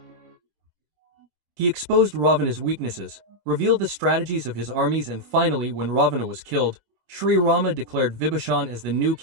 He exposed Ravana's weaknesses, revealed the strategies of his armies, and finally, when Ravana was killed, Sri Rama declared Vibhishan as the new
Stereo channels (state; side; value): late; left; 25 ms